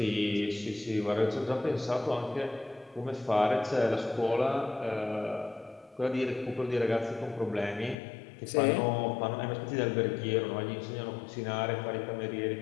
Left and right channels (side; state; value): right; drops out; at 8.0 s